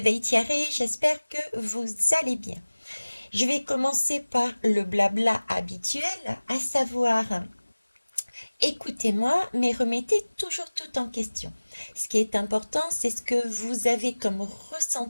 Thierry, j'espère que vous allez bien. Je vais commencer par le blabla habituel, à savoir écoutez-moi, mais remettez toujours tout en question. Ce qui est important, c'est ce que vous avez comme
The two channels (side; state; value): both; inverted; correlation -1.00